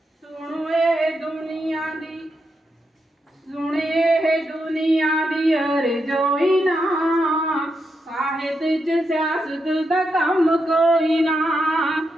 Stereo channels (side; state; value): both; normal; correlation 0.84